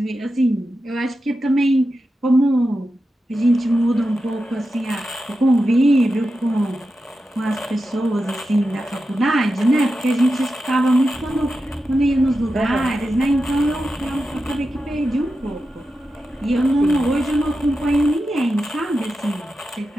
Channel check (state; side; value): normal; both; correlation 0.90